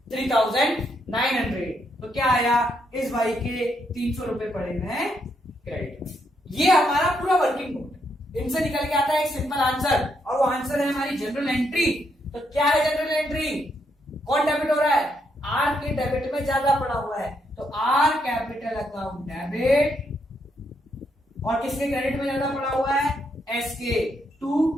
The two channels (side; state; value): both; normal; correlation 0.77